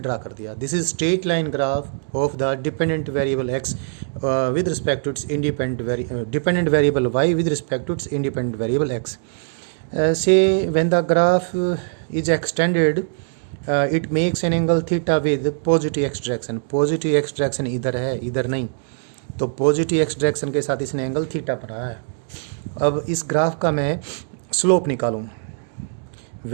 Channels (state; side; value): silent; left; digital silence